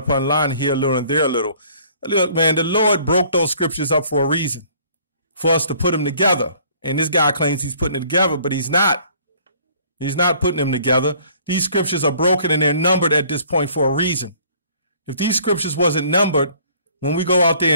line, here a little and there a little. Look, man, the Lord broke those scriptures up for a reason, for us to put them together. And this guy claims he's putting it together, but he's not. He's not putting them together. These scriptures are broken and they're numbered at this point for a reason. If these scriptures wasn't numbered, when we go out there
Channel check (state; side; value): inverted; both; correlation -0.57